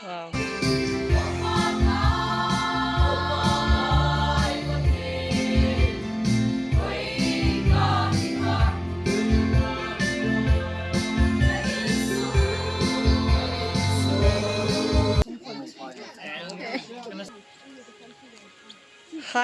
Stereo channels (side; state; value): both; identical; correlation 1.00